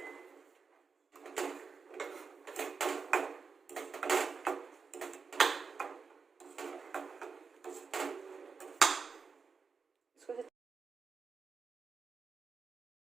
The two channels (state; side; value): quieter; left; 5.2 dB